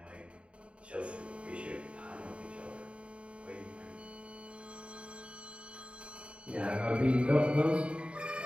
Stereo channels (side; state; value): left; late; 0.059 ms